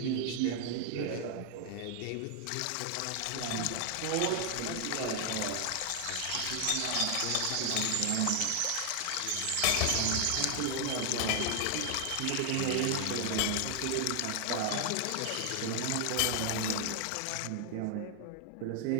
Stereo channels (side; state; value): both; different; correlation 0.00